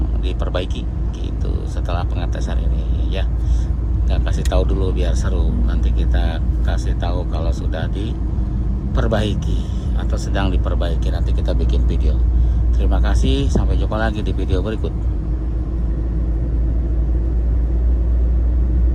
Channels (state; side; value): identical; both; correlation 1.00